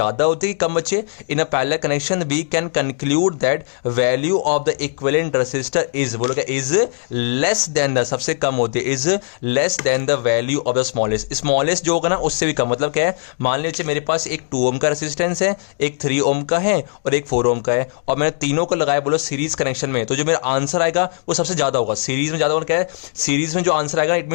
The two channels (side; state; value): right; silent; digital silence